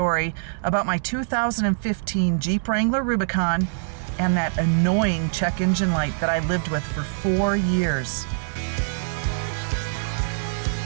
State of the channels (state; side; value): silent; left; digital silence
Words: about my 2015 Jeep Wrangler Rubicon and that annoying check engine light that I lived with for 4 years.